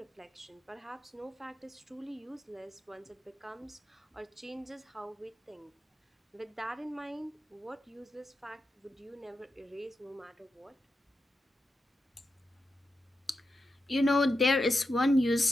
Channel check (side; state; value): both; normal; correlation 0.88